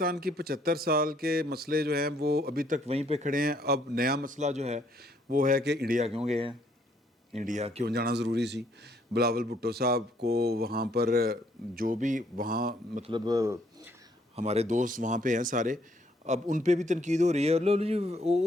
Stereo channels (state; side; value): normal; both; correlation 0.67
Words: की 75 साल के मसले जो हैं वो अभी तक वहीं पे खड़े हैं। अब नया मसला जो है वो है कि इंडिया क्यों गए हैं, इंडिया क्यों जाना ज़रूरी सी। बिलावल भुट्टो साहब को वहाँ पर जो भी वहाँ मतलब हमारे दोस्त वहाँ पे हैं सारे, अब उन पे भी तनकीद हो रही है। लो जी